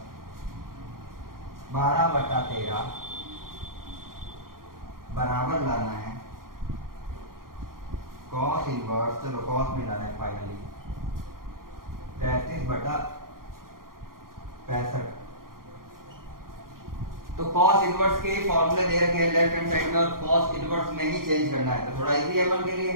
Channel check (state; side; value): late; left; 0.92 ms